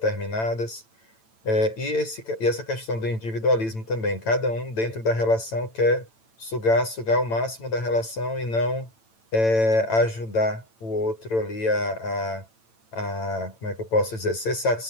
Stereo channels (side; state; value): right; late; 8.9 ms